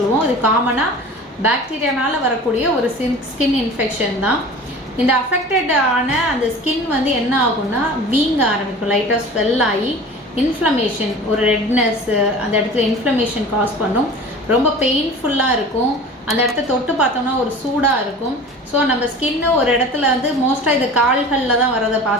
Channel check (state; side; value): normal; both; correlation 0.39